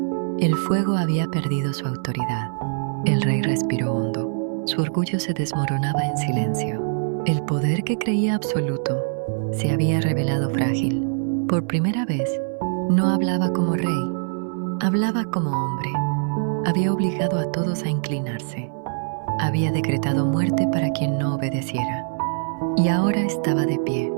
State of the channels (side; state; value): left; silent; 60 dB below the other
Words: El fuego había perdido su autoridad. El rey respiró hondo. Su orgullo se desmoronaba en silencio. El poder que creía absoluto se había revelado frágil. Por primera vez, no hablaba como rey, hablaba como hombre. Había obligado a todos a inclinarse. Había decretado muerte para quien no obedeciera. Y ahora estaba de pie,